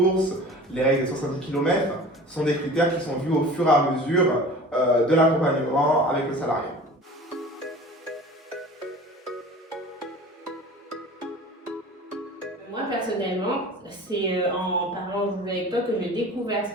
les règles des 70 km sont des critères qui sont vus au fur et à mesure de l'accompagnement avec le salarié. Moi personnellement, c'est en parlant avec toi que j'ai découvert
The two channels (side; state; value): both; normal; correlation 0.41